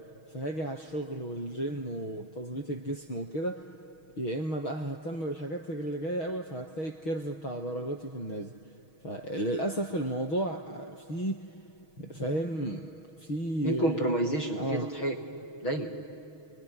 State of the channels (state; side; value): late; right; 6.3 ms